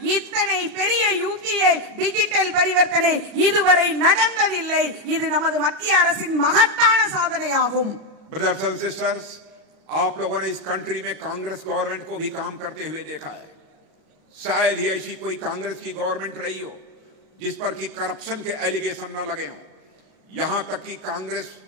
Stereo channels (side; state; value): left; late; 37 ms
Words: இத்தனை பெரிய யூபிஐ டிஜிட்டல் பரிவர்த்தனை இதுவரை நடந்ததில்லை. இது நமது மத்திய அரசின் மகத்தான சாதனையாகும். ब्रदर्स एंड सिस्टर्स, आप लोगों ने इस कंट्री में कांग्रेस गवर्नमेंट को भी काम करते हुए देखा है। शायद ही ऐसी कोई कांग्रेस की गवर्नमेंट रही हो जिस पर कि करप्शन के एलिगेशन न लगे हों। यहां तक कि कांग्रेस